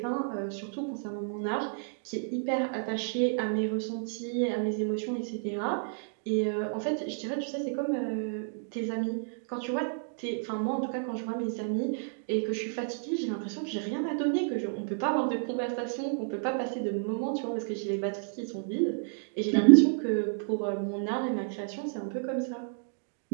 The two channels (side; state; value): left; silent; digital silence